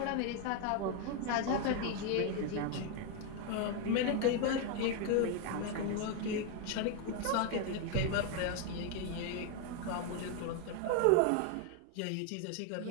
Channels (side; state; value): both; different; correlation 0.01